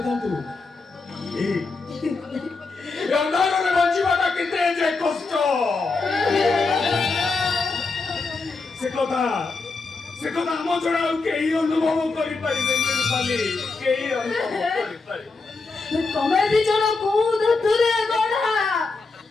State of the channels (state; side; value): quieter; right; 4.0 dB